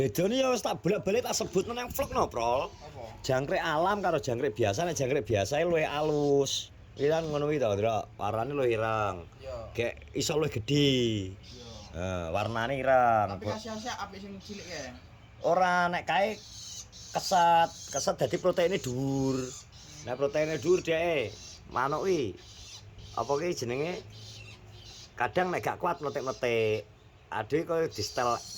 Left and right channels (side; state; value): both; identical; correlation 1.00